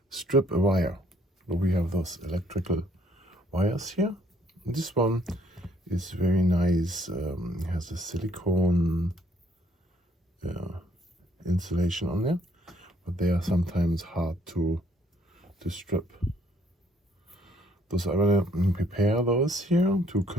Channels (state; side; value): normal; both; correlation 0.65